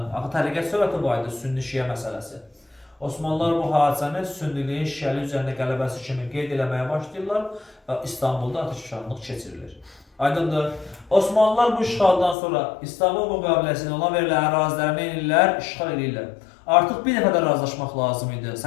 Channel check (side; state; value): right; drops out; at 12.4 s